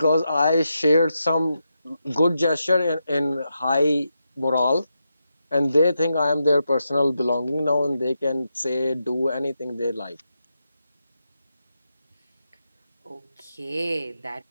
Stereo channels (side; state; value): both; inverted; correlation -0.86